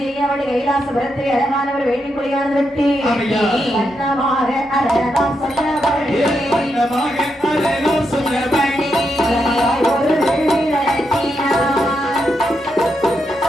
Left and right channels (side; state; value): both; normal; correlation 0.83